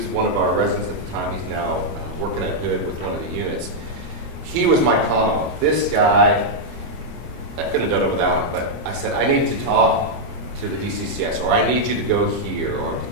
one of our residents at the time. He's now working at Hood with one of the units. He was my commo. This guy, I couldn't have done it without him, but I said, I need to talk to the DCCS, or I need you to go here, or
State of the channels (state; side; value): late; left; 25 ms